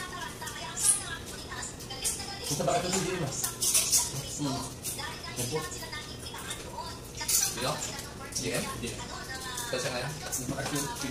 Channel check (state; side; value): identical; both; correlation 1.00